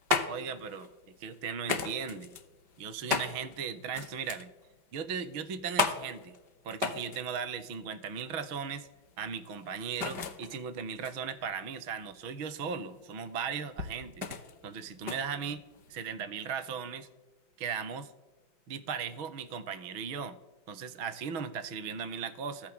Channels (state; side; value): late; left; 5.2 ms